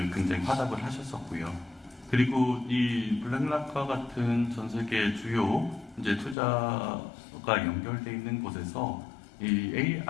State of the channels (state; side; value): drops out; right; at 6.4 s